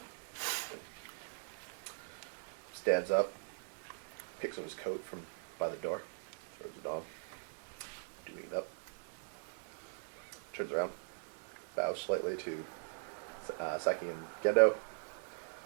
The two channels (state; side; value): silent; left; 51 dB below the other